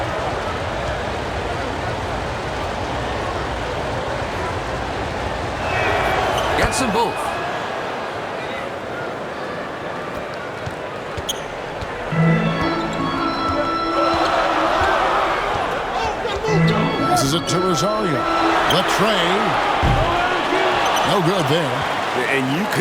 Gets them both. Passes it to Rosario. The tray. No good there. And you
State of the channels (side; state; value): both; identical; correlation 1.00